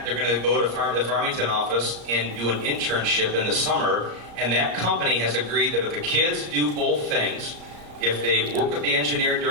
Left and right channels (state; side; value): late; left; 34 ms